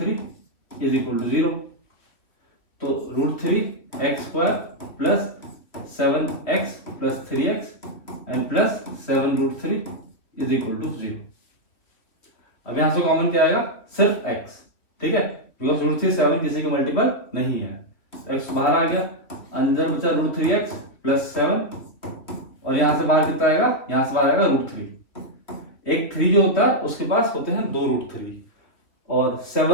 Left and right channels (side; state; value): right; late; 2.8 ms